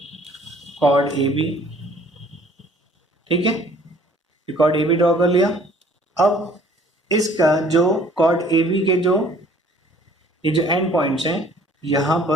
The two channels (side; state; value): both; normal; correlation 0.55